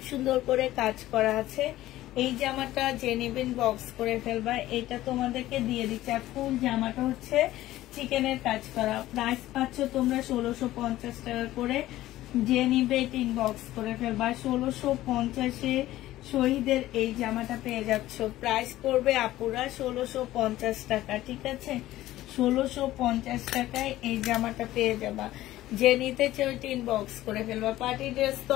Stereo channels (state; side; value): quieter; right; 15.3 dB